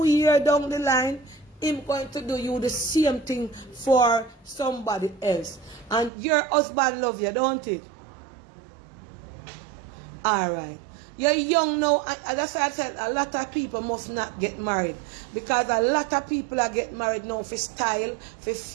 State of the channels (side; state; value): left; drops out; at 6.1 s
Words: years down the line, him going to do you the same thing for somebody else. And your husband love you, don't it? Alright. You're young now, and that's why I said a lot of people must not get married. Because a lot of people are getting married now for style, for